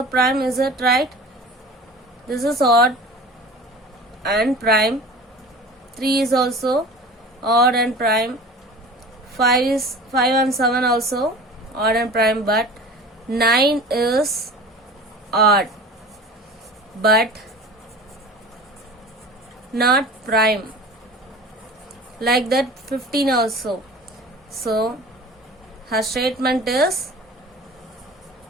prime, is it right? This is odd and prime. 3 is also odd and prime. 5 and 7 also odd and prime, but 9 is odd but not prime. Like that 15 also. So her statement is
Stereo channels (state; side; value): normal; both; correlation 0.39